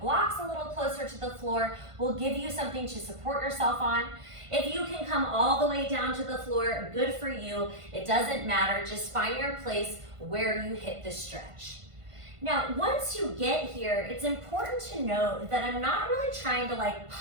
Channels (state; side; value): late; left; 1.5 ms